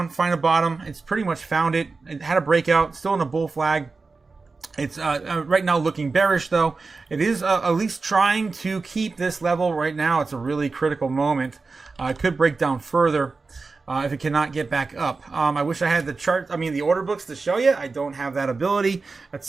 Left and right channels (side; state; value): left; quieter; 4.1 dB